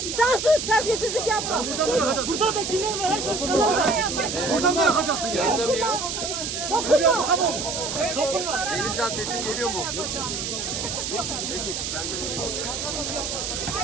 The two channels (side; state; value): right; noise; hiss, 3 dB below the sound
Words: Sen sus, terbiyesizlik yapma. Burada da kimler var? Haç başkanlar var. Buradan mı yapacaksın? Yanında mıyız? Dokunma. Denizcan sesim geliyor mu? Peki, bence de geliyor.